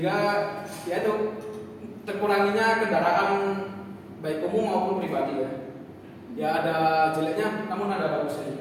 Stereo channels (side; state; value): both; identical; correlation 1.00